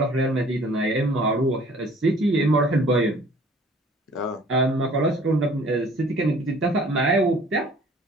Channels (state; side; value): normal; both; correlation 0.52